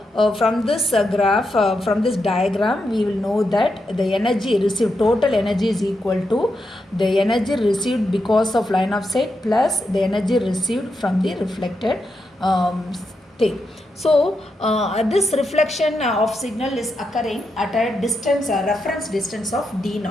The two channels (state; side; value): normal; both; correlation 0.85